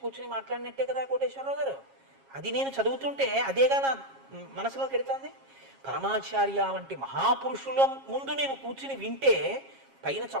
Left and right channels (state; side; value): late; left; 7.4 ms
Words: కూర్చుని మాట్లాడినట్టే కదా కోటేశ్వరరావు గారు. అది నేను చదువుతుంటే అదేగా నా మనసులో పెడుతుంది. పరమాచార్య వంటి మహాపురుషుల ముందు నేను కూర్చుని వింటే పైన